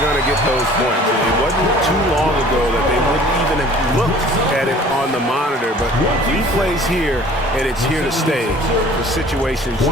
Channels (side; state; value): both; normal; correlation 0.50